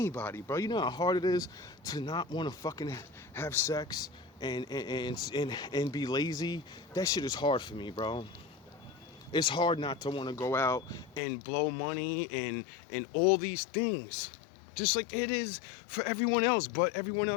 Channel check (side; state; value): right; drops out; at 11.2 s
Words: bro. You know how hard it is to not want to fucking have sex and be lazy? That shit is hard for me, bro. It's hard not to want to go out and blow money and all these things. Just like it is for everyone else, but everyone